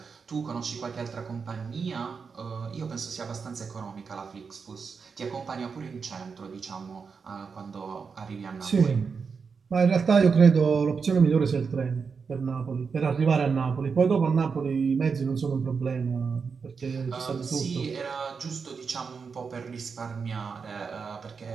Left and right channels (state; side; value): quieter; left; 5.5 dB